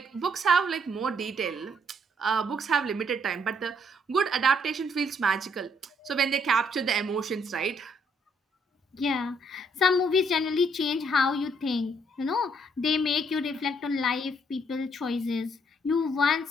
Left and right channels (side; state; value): both; normal; correlation 0.69